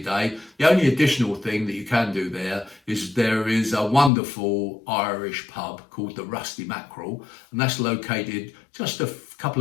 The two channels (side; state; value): right; drops out; at 4.1 s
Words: day. The only additional thing that you can do there is a wonderful Irish pub called the Rusty Mackerel, and that's located just a couple